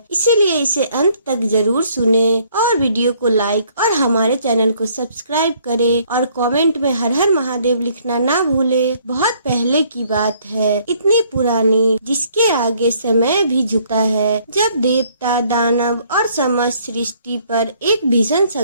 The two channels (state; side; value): inverted; both; correlation -0.64